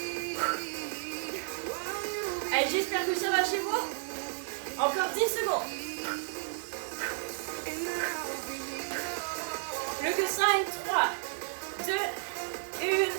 Allez, j'espère que ça va chez vous. Encore 10 secondes. Plus que 5, 3, 2,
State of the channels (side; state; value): left; silent; 55 dB below the other